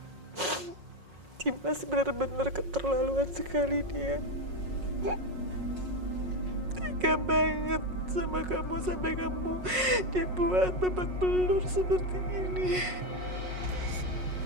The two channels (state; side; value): late; left; 5.5 ms